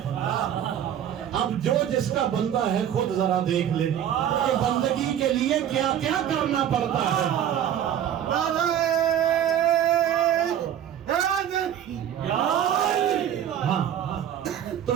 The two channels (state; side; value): quieter; left; 10.1 dB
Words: ہے۔ اب جو جس کا بندہ ہے خود ذرا دیکھ لے کہ بندگی کے لیے کیا کیا کرنا پڑتا ہے۔ تو